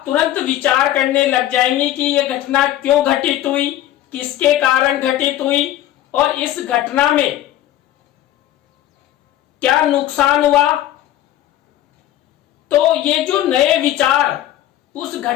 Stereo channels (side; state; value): right; quieter; 13.1 dB